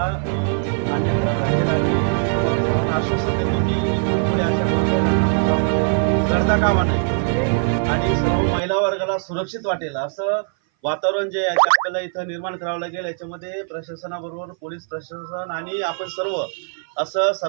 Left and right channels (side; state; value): left; silent; 60 dB below the other